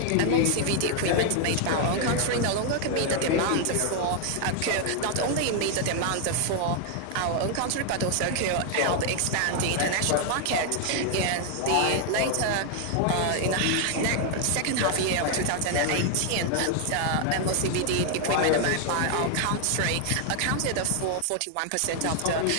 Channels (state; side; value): different; both; correlation 0.00